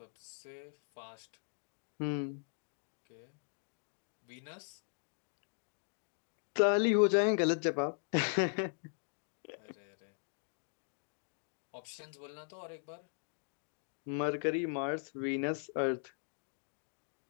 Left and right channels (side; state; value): right; silent; digital silence